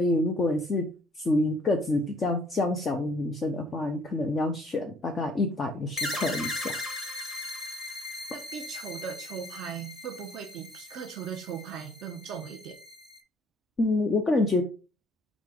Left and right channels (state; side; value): normal; both; correlation 0.61